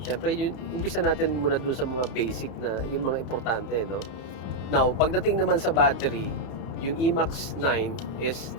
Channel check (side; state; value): right; late; 32 ms